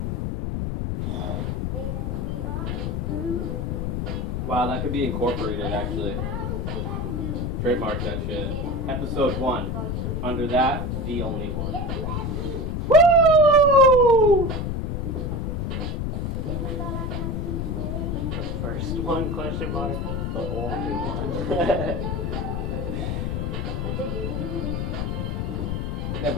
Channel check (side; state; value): left; noise; rumble, 1 dB below the sound